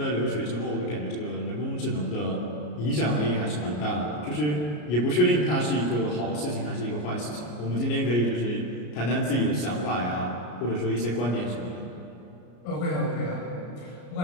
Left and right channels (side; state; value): right; late; 33 ms